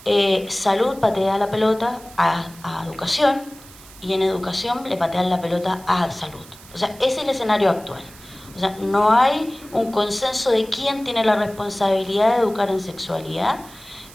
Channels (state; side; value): noise; right; hiss, 21 dB below the sound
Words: salud patea la pelota a educación, y en educación le patean la pelota a salud. O sea, ese es el escenario actual. O sea, no hay un consenso de quién tiene la responsabilidad de educar en sexualidad,